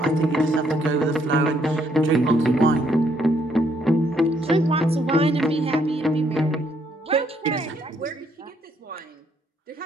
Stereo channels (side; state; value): both; normal; correlation 0.70